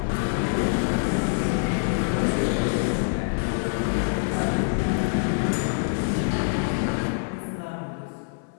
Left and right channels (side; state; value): right; silent; 57 dB below the other